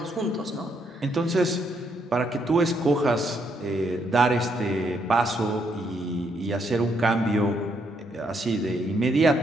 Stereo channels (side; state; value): both; normal; correlation 0.74